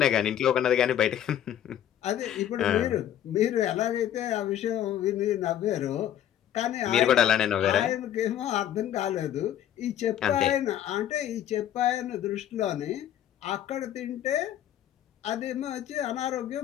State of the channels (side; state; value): right; quieter; 11.0 dB